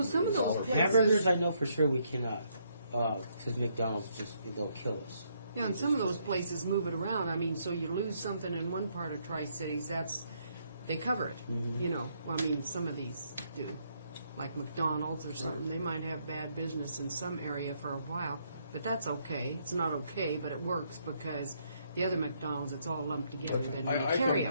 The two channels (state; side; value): inverted; both; correlation -0.73